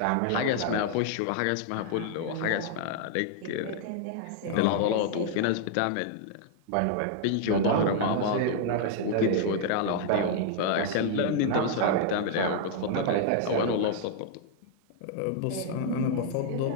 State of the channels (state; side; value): different; both; correlation -0.01